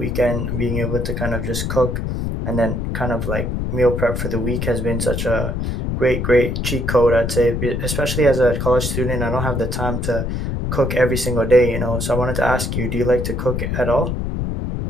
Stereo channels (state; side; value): noise; left; rumble, 2 dB below the sound